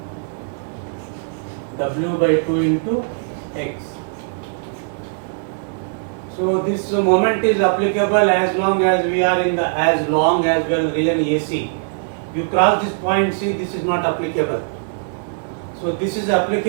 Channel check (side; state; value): left; silent; digital silence